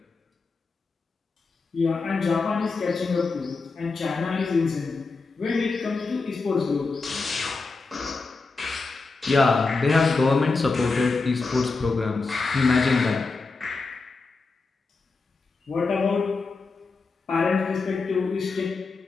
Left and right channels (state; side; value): quieter; right; 4.1 dB